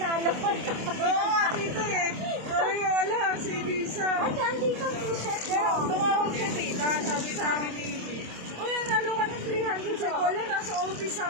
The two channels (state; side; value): late; left; 27 ms